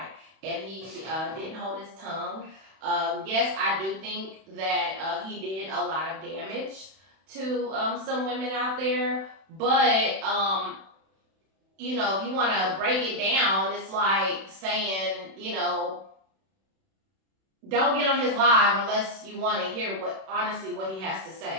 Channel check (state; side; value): late; left; 31 ms